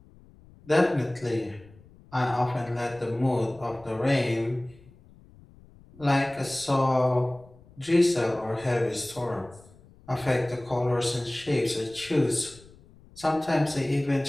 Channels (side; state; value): left; noise; rumble, 25 dB below the sound